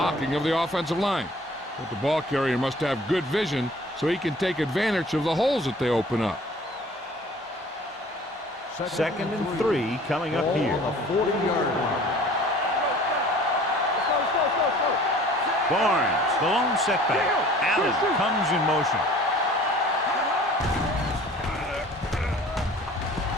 of the offensive line. But the ball carrier must have good vision so he can take advantage of the holes that they open up. 2nd and 3 coming up here. On the 40-yard line. Barnes, the lone setback. Allen comes in motion.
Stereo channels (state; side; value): normal; both; correlation 0.49